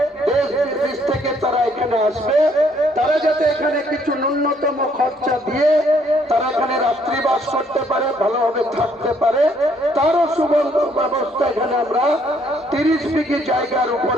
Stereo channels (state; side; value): normal; both; correlation 0.67